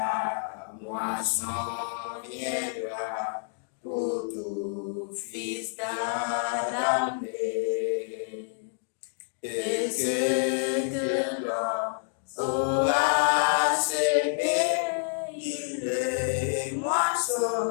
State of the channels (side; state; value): right; silent; digital silence